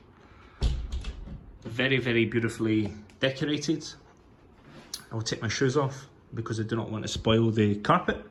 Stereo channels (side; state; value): both; identical; correlation 1.00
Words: Very, very beautifully decorated. I will take my shoes off because I do not want to spoil the carpet.